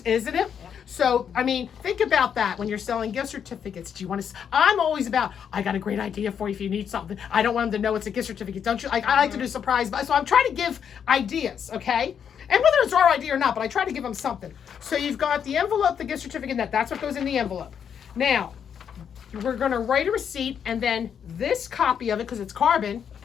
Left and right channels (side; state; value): right; quieter; 7.9 dB